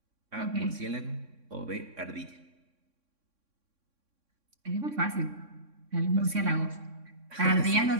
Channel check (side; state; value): left; late; 3.6 ms